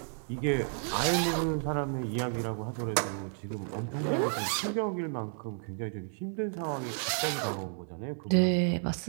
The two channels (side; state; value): left; silent; 57 dB below the other